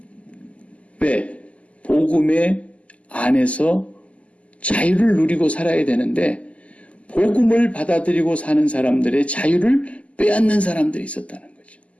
왜? 복음의 안에서 자유를 누리고 살아야 되는데 복음을 받아들이고 사는 사람들의 자유를 빼앗는 사람들이 있었다는 거죠.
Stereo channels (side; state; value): right; late; 0.065 ms